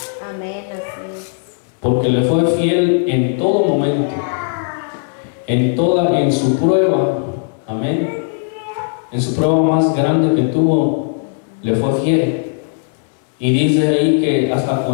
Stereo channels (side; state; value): right; silent; digital silence